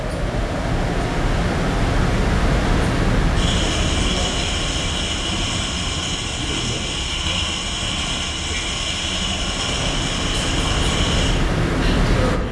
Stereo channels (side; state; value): both; identical; correlation 1.00